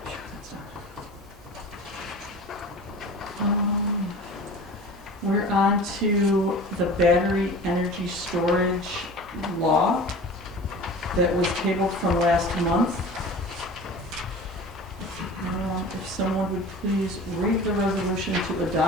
We're on to the battery energy storage law that was tabled from last month. If someone would please read the resolution to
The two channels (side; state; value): both; normal; correlation 0.38